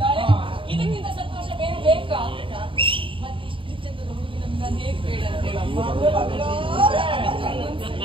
ಇದಕ್ಕಿಂತ ಸಂತೋಷ ಬೇರೆ ಬೇಕಾ? ಮತ್ತೆ ಇಷ್ಟು ಚಂದದ ಹುಡುಗಿ ನಮ್ಗೆ ಹೇಗೆ ಬೇಡ ಅಂತ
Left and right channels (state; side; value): late; left; 0.25 ms